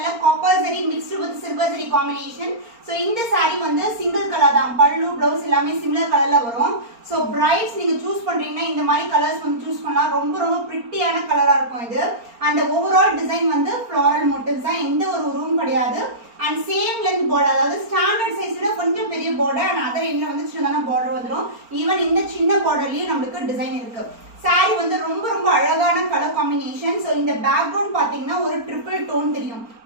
copper zari mixed with silver zari combination. So இந்த saree வந்து சிங்கிள் கலர் தான். பல்லு ப்ளவுஸ் எல்லாமே சிமிலர் கலர்ல வரும். ஸோ பிரைட்ஸ் நீங்க சூஸ் பண்றீங்கன்னா இந்த மாதிரி கலர்ஸ் வந்து சூஸ் பண்ணலாம். ரொம்ப பிரிட்டியான கலரா இருக்கும் இது. அந்த ஓவரால் டிசைன் வந்து ஃப்ளாரல் மோட்டிவ்ஸ் தான், எந்த ஒரு உருவம் கிடையாது. அண்ட் சேம் லென்த் பார்டர், அதாவது ஸ்டாண்டர்ட் சைஸ் விட கொஞ்சம் பெரிய பார்டர் அண்ட் அதர் எண்ட்ல வந்து சின்னதான பார்டர் வந்துடும். ஈவன் இந்த சின்ன பார்டர்லயும் நம்மளுக்கு டிசைன் இருக்கு. சாரி வந்து ரொம்ப அழகான கலர் காம்பினேஷன். ஸோ இந்த பேக்ரவுண்ட் பாத்தீங்கன்னா ஒரு ட்ரிபிள் டோன் தெரியும்.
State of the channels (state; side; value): late; left; 4.4 ms